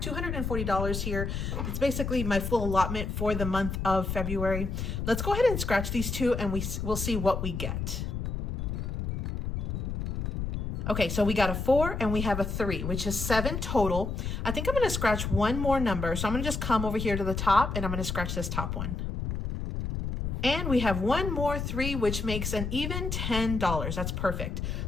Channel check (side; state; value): left; noise; rumble, 3 dB below the sound